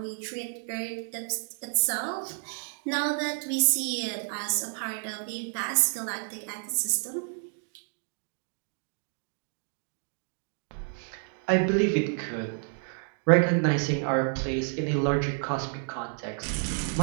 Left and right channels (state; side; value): silent; left; 58 dB below the other